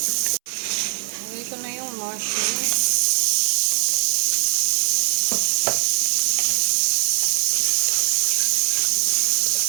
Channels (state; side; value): silent; left; 65 dB below the other